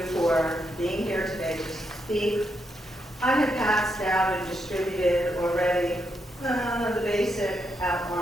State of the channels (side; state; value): both; normal; correlation 0.81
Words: being here today to speak. I have passed out and distributed already the basic